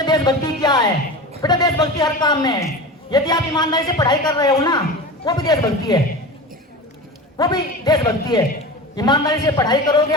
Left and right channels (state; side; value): normal; both; correlation 0.30